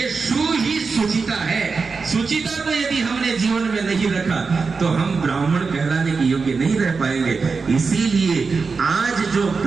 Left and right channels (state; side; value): quieter; left; 4.7 dB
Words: शु ही सुचिता है। सुचिता को यदि हमने जीवन में नहीं रखा तो हम ब्राह्मण कहलाने के योग्य नहीं रह पाएंगे। इसीलिए आज जो